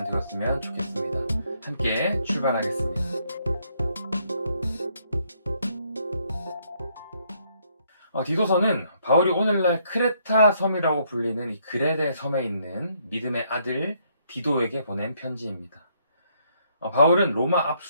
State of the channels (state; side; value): inverted; both; correlation -0.71